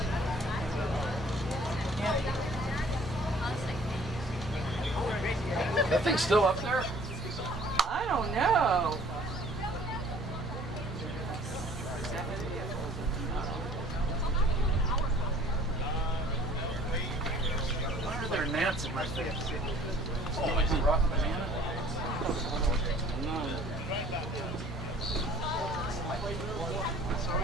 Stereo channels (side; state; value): both; normal; correlation 0.53